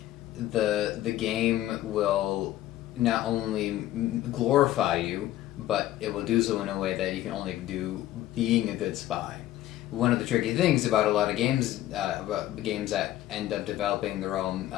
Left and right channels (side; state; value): right; quieter; 14.1 dB